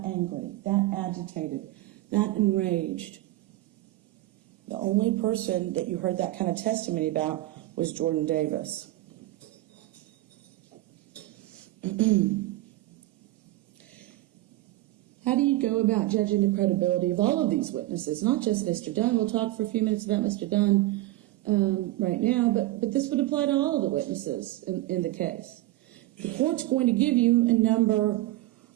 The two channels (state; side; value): quieter; left; 17.3 dB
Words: angry, that agitated, that enraged. The only person that you heard that kind of testimony about was Jordan Davis. How do you go about judging the credibility of all of these witnesses? Not just Mr. Dunn. We'll talk for a few minutes about Mr. Dunn right now, but this would apply to all of the witnesses in the case. The court's going to give you a number